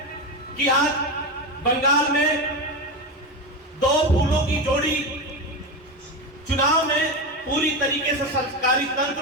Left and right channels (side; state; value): both; normal; correlation 0.17